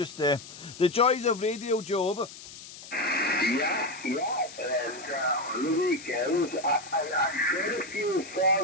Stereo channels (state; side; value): noise; left; hiss, 15 dB below the sound